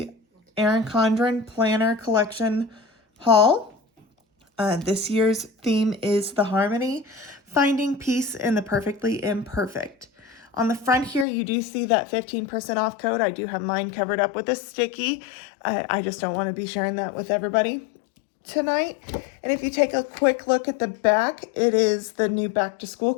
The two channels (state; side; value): drops out; right; at 11.2 s